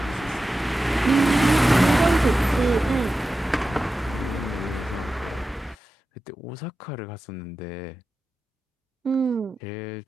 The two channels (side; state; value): both; normal; correlation 0.93